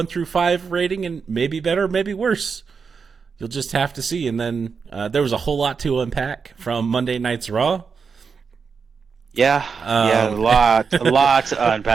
through 5 rating and maybe better, maybe worse. You'll just have to see. And then there was a whole lot to unpack from Monday Night's Raw. Yeah, yeah, Um, a lot to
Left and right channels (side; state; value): left; quieter; 5.6 dB